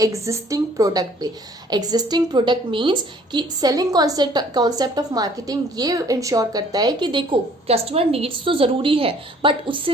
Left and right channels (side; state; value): both; normal; correlation 0.57